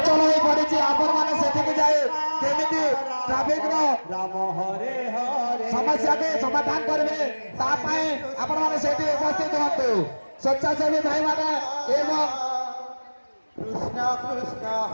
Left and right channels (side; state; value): both; inverted; correlation -1.00